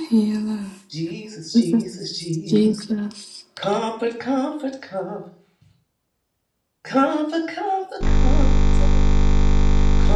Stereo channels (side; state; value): both; identical; correlation 1.00